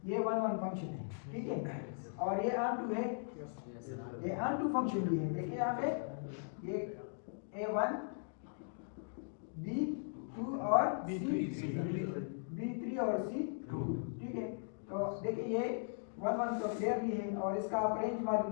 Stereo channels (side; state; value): right; silent; digital silence